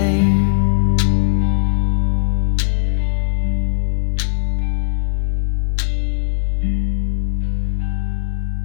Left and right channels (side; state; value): right; silent; 63 dB below the other